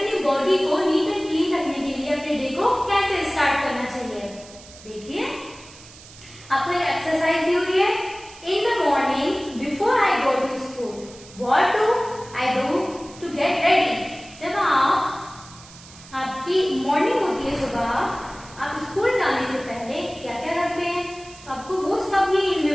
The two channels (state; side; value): noise; right; hiss, 20 dB below the sound